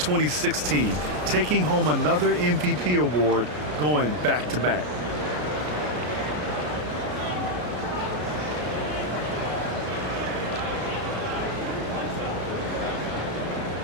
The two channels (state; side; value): late; left; 33 ms